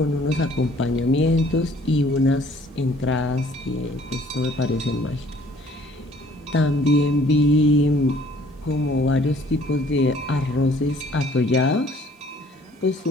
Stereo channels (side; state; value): both; normal; correlation 0.57